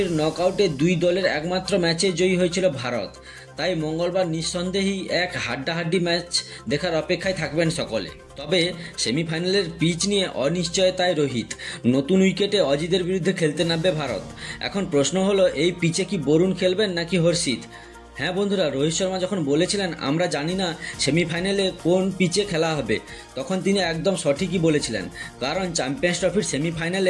নকআউটে দুই দলের একমাত্র ম্যাচে জয়ী হয়েছিল ভারত। তাই মঙ্গলবার নিঃসন্দেহেই এক হাড্ডাহাড্ডি ম্যাচ দেখার অপেক্ষায় থাকবেন সকলে। তবে সেমিফাইনালের পিচ নিয়ে অনিশ্চয়তায় রোহিত। নতুন উইকেটে অজিতের বিরুদ্ধে খেলতে নামবে ভারত। এখন প্রশ্ন হলো, এই পিচে কি বরুণ খেলবেন নাকি হর্ষিত? হ্যাঁ বন্ধুরা, রোহিত শর্মা যখন বলেছিলেন আমরা জানি না সেমিফাইনালে কোন পিচে খেলা হবে, তখন তিনি একদম সঠিকই বলেছিলেন, কারণ চ্যাম্পিয়ন্স ট্রফির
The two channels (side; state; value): both; identical; correlation 1.00